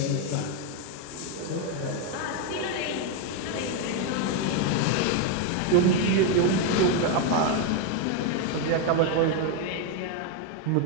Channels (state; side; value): different; both; correlation 0.02